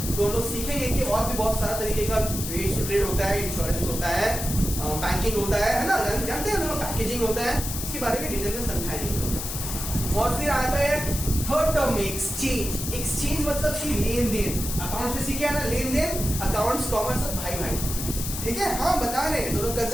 तो हम लोग सीखेंगे कि और भी बहुत सारा तरीके का aids to trade होता है, इंश्योरेंस होता है, बैंकिंग होता है ना, जानते हैं लोग, पैकेजिंग होता है, इसके बारे में डिटेल में समझाएंगे। और फिर आता है थर्ड टर्म में एक्सचेंज। एक्सचेंज मतलब कि लेन देन। अकाउंट्स में सीखे है ना, लेन देन, अकाउंट्स, कॉमर्स, सब भाई भाई, ठीक है। हाँ, बता रहे हैं, दोनों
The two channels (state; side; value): noise; left; hiss, 5 dB below the sound